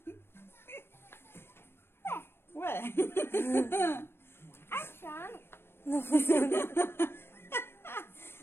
Ué? Achando. Não funciona.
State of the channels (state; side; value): late; right; 0.11 ms